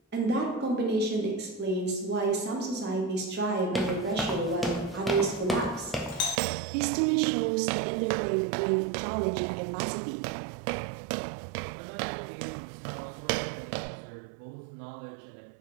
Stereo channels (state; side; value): drops out; left; at 6.4 s